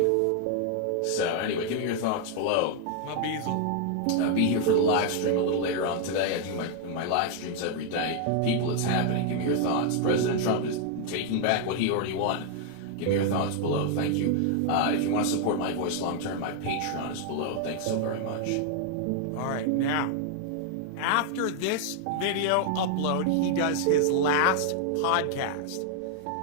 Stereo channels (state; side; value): different; both; correlation 0.00